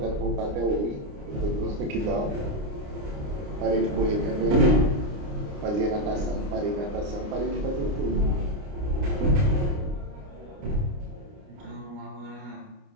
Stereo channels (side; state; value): left; late; 29 ms